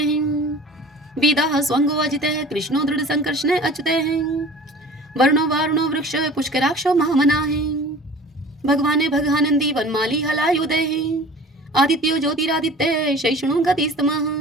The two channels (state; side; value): normal; both; correlation 0.43